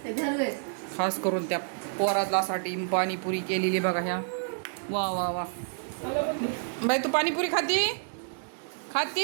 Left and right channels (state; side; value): silent; left; digital silence